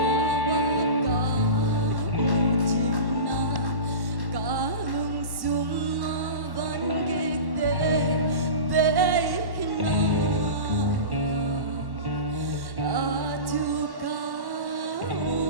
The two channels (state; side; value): late; left; 1.1 ms